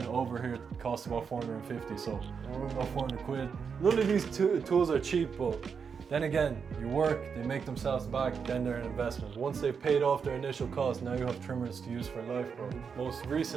it over here costs about 450, so about 400 quid. None of these tools are cheap, but then again, you work, they make themselves back, then they're an investment. Once they've paid off their initial cost, now you have trimmers to use for life, bro. Most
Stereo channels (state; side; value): quieter; left; 6.2 dB